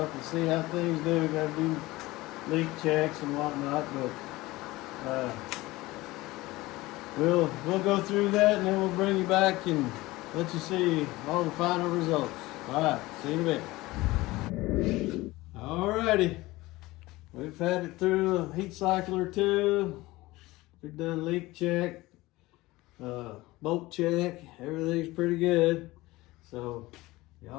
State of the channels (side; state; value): right; quieter; 19.6 dB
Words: and see how things do. Got to do leak checks and whatnot, but we'll go through that, and then we'll bring you back and let you see all the final results. All right, see you in a bit. Alrighty, we've had it through a heat cycle or two. We've done leak check, bolt check. Everything's pretty good. So